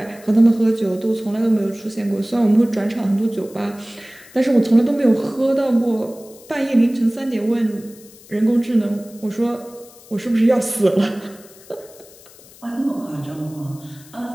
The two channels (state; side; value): noise; left; hiss, 23 dB below the sound